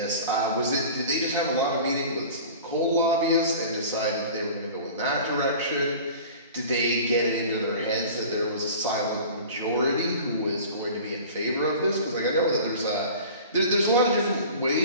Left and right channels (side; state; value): both; inverted; correlation -0.40